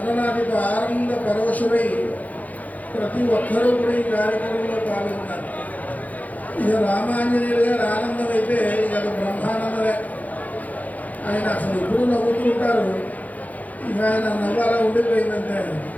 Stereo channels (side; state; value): right; late; 0.077 ms